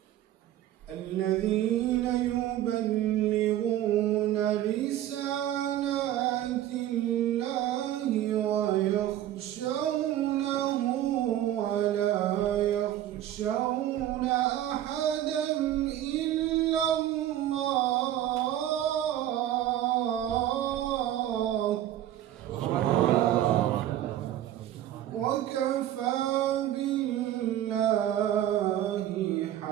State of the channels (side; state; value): left; quieter; 12.5 dB